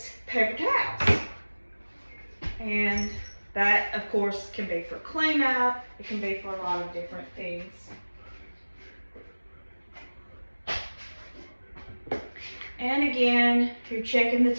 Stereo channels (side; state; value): both; inverted; correlation -1.00